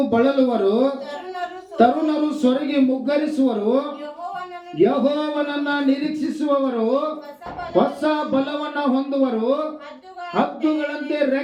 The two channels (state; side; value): identical; both; correlation 1.00